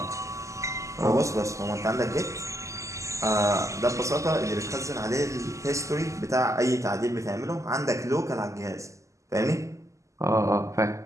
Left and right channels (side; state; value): left; late; 0.15 ms